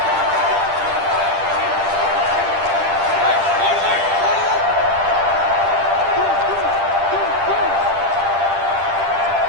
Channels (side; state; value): left; late; 10 ms